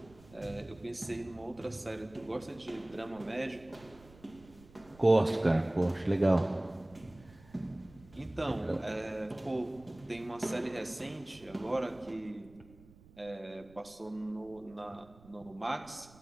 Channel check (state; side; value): noise; right; rumble, 23 dB below the sound